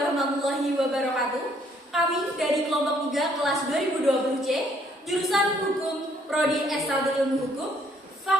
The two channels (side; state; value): both; normal; correlation 0.66